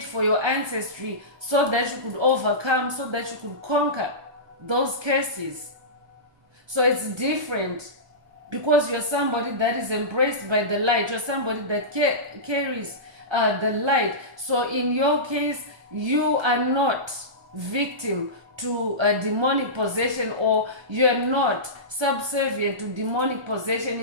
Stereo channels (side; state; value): left; late; 1.3 ms